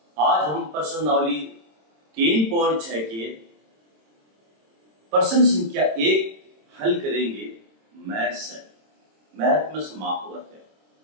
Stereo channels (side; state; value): left; late; 27 ms